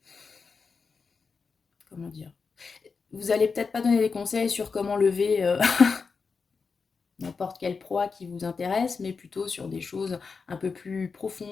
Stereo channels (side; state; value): right; quieter; 5.0 dB